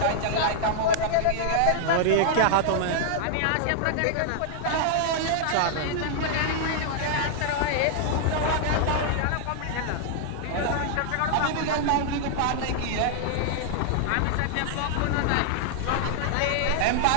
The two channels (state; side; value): different; both; correlation -0.01